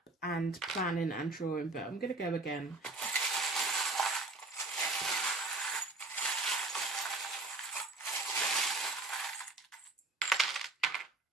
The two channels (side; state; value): left; quieter; 3.2 dB